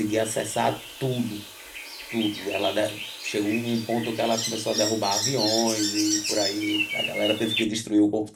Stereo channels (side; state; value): both; identical; correlation 1.00